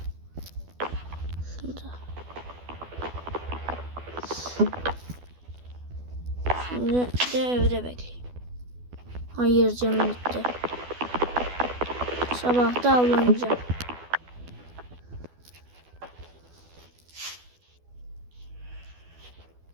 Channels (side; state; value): left; late; 12 ms